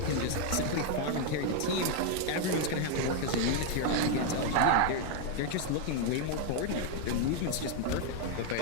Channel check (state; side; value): different; both; correlation 0.01